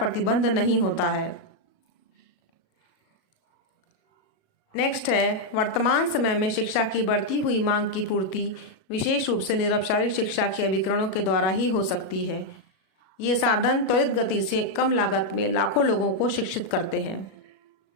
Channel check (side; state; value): right; late; 37 ms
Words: नहीं होता है। नेक्स्ट है, वर्तमान समय में शिक्षा की बढ़ती हुई मांग की पूर्ति विशेष रूप से निरौपचारिक शिक्षा के अभिकरणों के द्वारा ही हो सकती है। ये साधन त्वरित गति से कम लागत में लाखों लोगों को शिक्षित करते हैं।